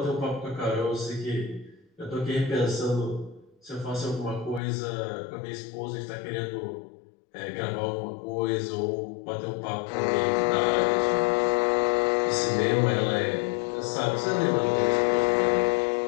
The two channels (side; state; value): right; drops out; at 4.6 s